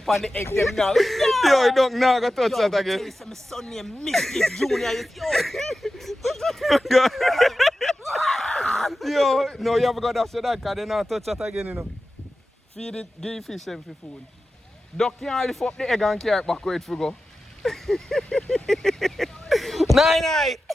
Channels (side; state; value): both; normal; correlation 0.93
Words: on the egg them now. Yo, you don't know, I got touch that again. Yo, my son named Mischief Junior. Yo, no, you haven't got to say that because they not touch that again, you know. Feed it, give fish them for food. Duck can't lift up the egg and carry it back where it for go. Nine.